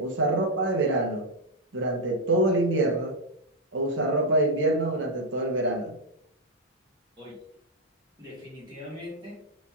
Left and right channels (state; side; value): normal; both; correlation -0.01